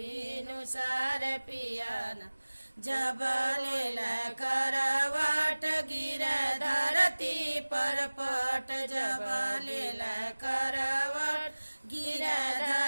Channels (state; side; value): inverted; both; correlation -1.00